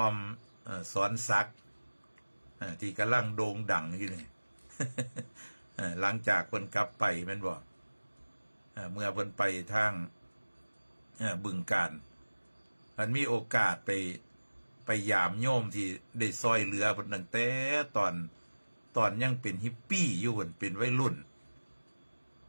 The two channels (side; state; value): both; inverted; correlation -1.00